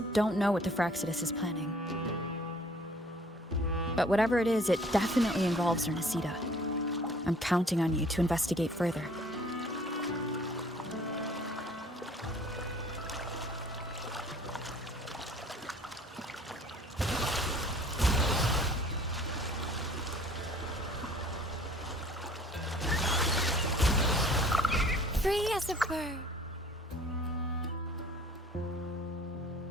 don't know what the Fraxidus is planning. But whatever it is, it definitely involves Ernestida. I'm counting on you to investigate further. Free as a bird.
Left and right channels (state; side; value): normal; both; correlation 0.53